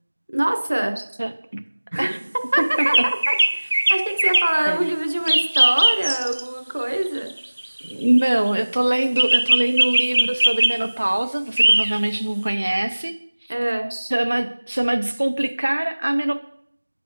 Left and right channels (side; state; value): both; inverted; correlation -1.00